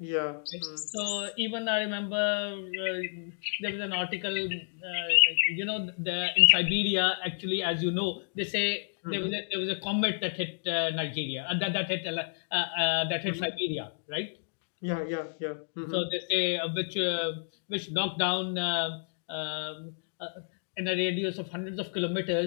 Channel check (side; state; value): right; silent; digital silence